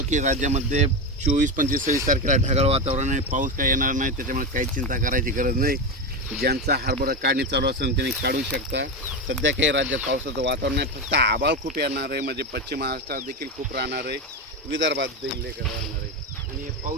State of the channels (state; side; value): normal; both; correlation 0.16